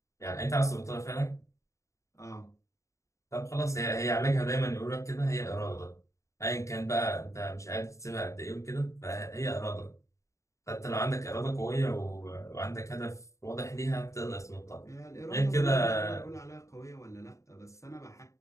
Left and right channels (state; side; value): late; right; 0.15 ms